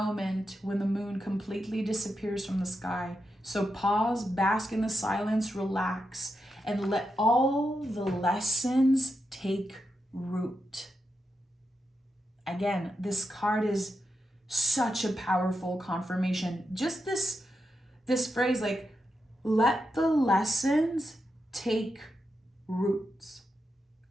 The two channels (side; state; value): both; normal; correlation 0.86